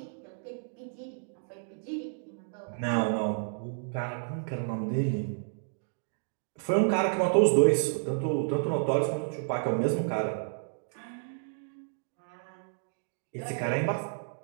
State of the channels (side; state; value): left; silent; digital silence